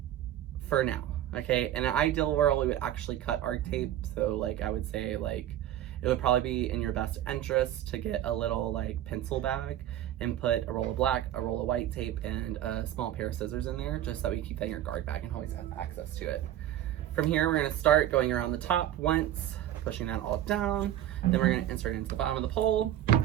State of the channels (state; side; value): quieter; left; 12.1 dB